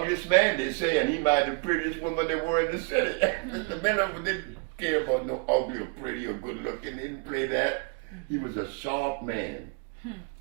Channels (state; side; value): quieter; left; 32.9 dB